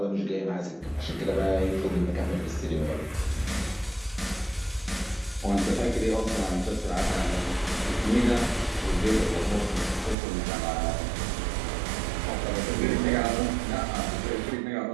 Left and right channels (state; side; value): drops out; left; at 10.2 s